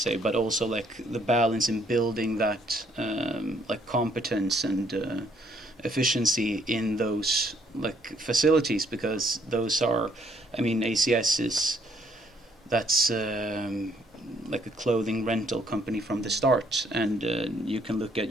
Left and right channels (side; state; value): both; normal; correlation 0.66